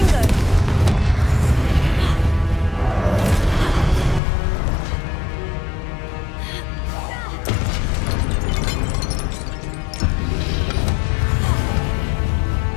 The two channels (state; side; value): drops out; right; at 4.2 s